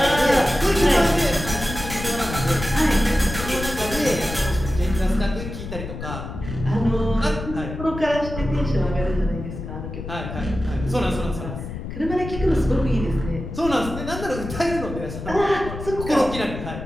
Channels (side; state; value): left; noise; rumble, 8 dB below the sound